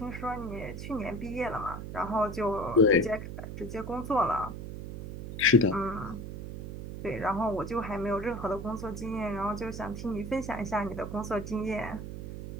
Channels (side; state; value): right; noise; hum, 8 dB below the sound